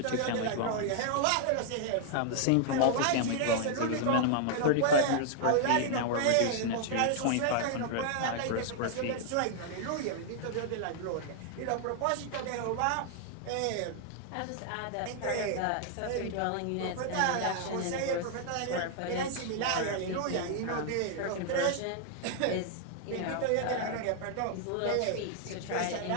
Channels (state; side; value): different; both; correlation 0.00